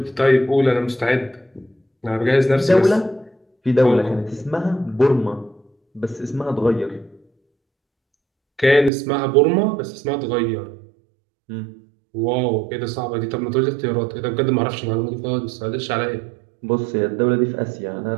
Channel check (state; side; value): drops out; left; at 8.9 s